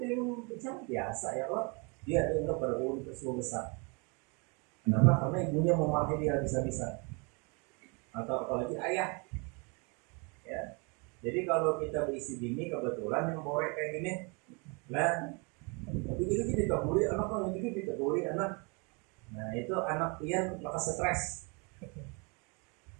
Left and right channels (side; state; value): left; quieter; 32.2 dB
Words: pecah biasa ya kok? Dia dianggap berulur musibah besar. Kenapa? Karena ibunya memakai dia habis-habisan. Atau apalagi ayah. Ya. Jadi kalau kita berisi bini kebetulan yang borek kayak gini, lah, begitu kita dikaburi anak, kalau begitu dikaburi anak. Nah itu anak pian lekas stres.